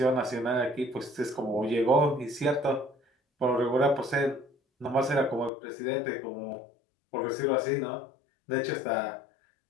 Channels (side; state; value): right; drops out; at 5.5 s